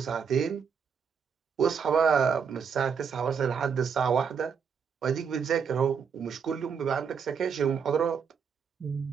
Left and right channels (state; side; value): quieter; left; 6.6 dB